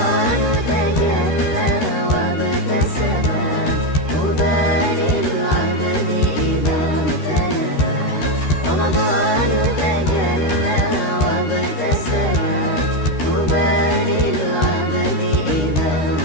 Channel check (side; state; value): right; late; 13 ms